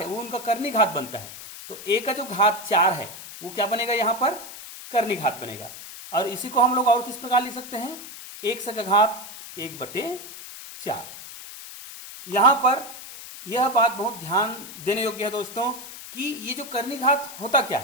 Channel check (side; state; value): left; noise; hiss, 13 dB below the sound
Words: वो उनका करनी घात बनता है। तो a का जो घात 4 है वो क्या बनेगा, यहां पर करनी घात बनेगा। और इसी को हम लोग और किस प्रकार लिख सकते हैं, 1 का घात 1/4। यहां पर यह बात बहुत ध्यान देने योग्य है दोस्तों कि ये जो करनी घात होता क्या